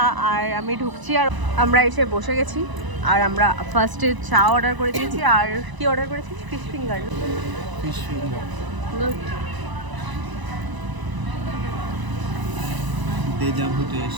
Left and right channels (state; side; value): late; left; 1.0 ms